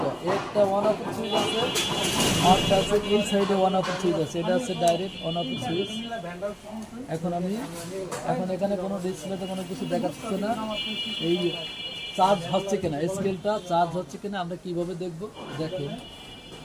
একটা ওয়ান অফ সুইচ আছে আর আছে এই সাইডে ওয়ান অফ সুইচ আছে। এটা হচ্ছে ডাইরেক্ট ওয়ান অফ সুইচ। এখন এখানে কোনো ডিসপ্লেতে কোনো কিছু দেখাচ্ছে না, এই চার্জ হচ্ছে কিনা, স্কেলটা চার্জ হচ্ছে কিনা আমরা কিভাবে দেখব। দেখেন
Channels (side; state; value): both; identical; correlation 1.00